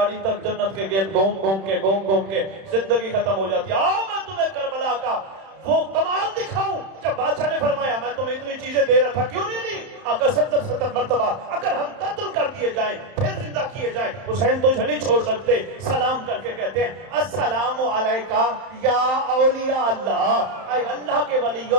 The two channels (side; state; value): left; late; 31 ms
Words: تک جنت کے گرد گھوم کے زندگی ختم ہو جاتی ہے. آؤ میں تمہیں کربلا کا وہ کمال دکھاؤں. جب بادشاہ نے فرمایا میں تمہیں اتنی چیزیں دے رہا تھا, کیوں نہیں لی؟ اگر 70 مرتبہ اگر ہم قتل کر دیے جائیں پھر زندہ کیے جائیں, حسین تجھے نہیں چھوڑ سکتے. سلام کر کے کہتے ہیں السلام علیکہ یا اولیاء اللہ, اے اللہ کے